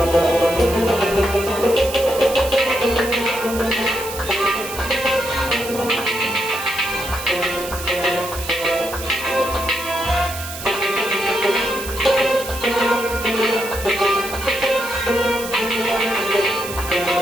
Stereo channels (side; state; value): right; noise; hiss, 10 dB below the sound